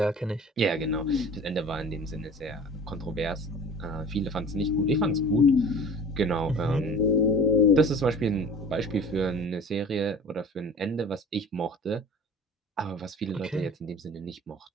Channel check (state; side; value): normal; both; correlation 0.42